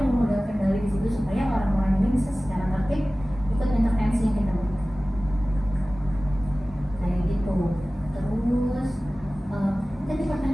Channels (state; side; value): normal; both; correlation 0.97